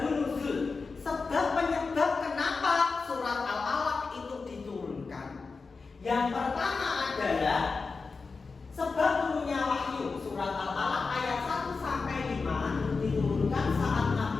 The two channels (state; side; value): quieter; right; 4.4 dB